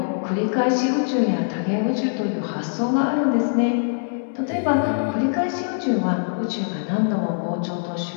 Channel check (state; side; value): silent; right; digital silence